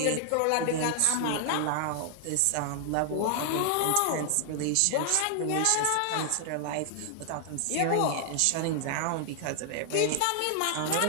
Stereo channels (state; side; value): different; both; correlation 0.00